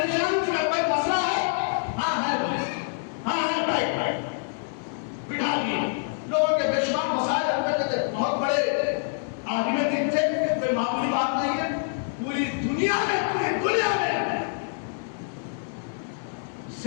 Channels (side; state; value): right; silent; 61 dB below the other